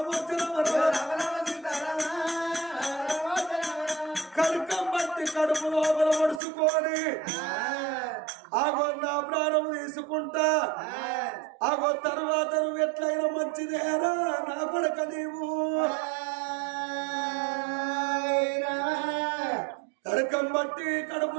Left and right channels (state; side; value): drops out; left; at 6.4 s